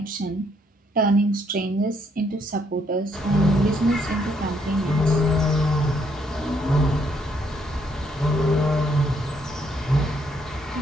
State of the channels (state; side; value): normal; both; correlation 0.71